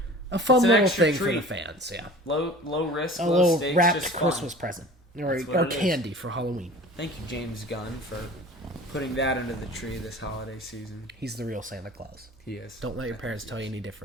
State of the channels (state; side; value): normal; both; correlation 0.42